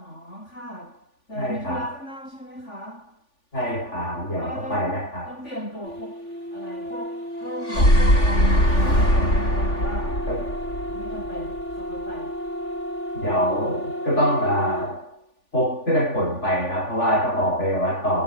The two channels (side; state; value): right; late; 3.5 ms